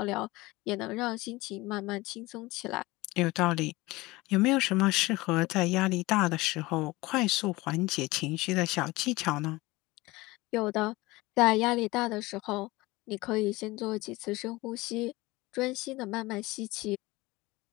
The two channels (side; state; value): right; quieter; 20.9 dB